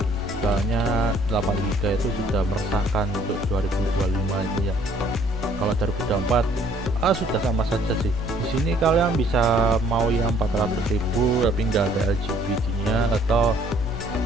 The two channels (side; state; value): both; normal; correlation 0.61